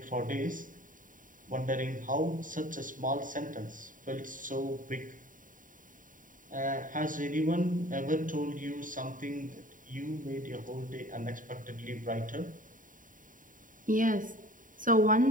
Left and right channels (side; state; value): left; late; 0.39 ms